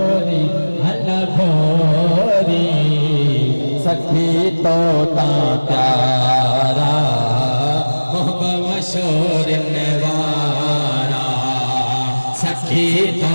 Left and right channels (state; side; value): inverted; both; correlation -1.00